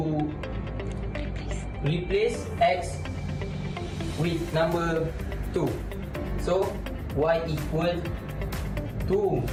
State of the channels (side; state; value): both; identical; correlation 1.00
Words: replace x with number 2. So y equal 2